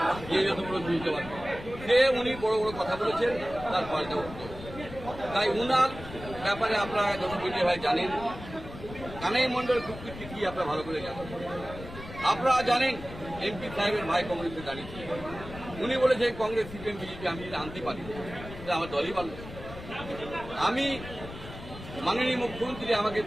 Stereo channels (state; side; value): noise; left; rumble, 13 dB below the sound